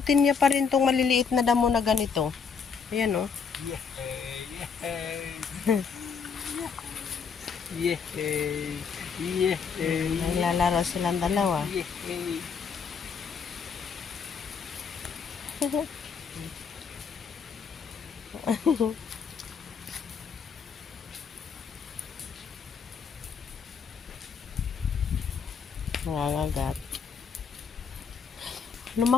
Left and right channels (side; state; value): right; quieter; 6.1 dB